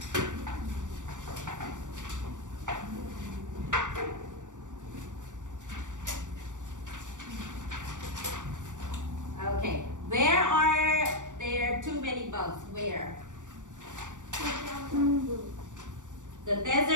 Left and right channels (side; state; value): left; late; 0.86 ms